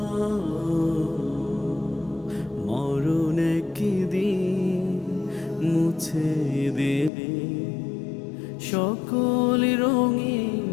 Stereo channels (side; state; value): right; drops out; at 7.1 s